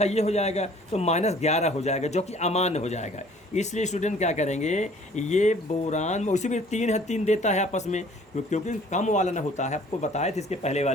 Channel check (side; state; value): both; normal; correlation 0.54